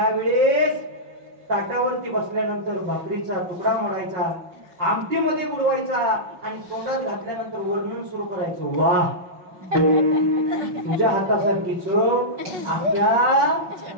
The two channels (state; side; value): late; left; 5.7 ms